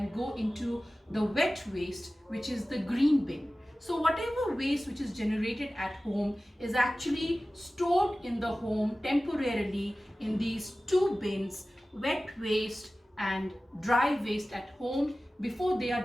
go into the wet waste, which is the green bin. So whatever waste which is generated at home is actually stored in the home temporarily in these two bins, wet waste and dry waste at home, before they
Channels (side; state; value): both; normal; correlation 0.96